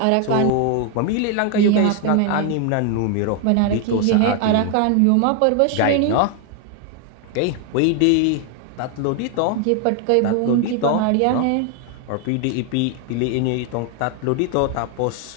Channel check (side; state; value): both; different; correlation 0.01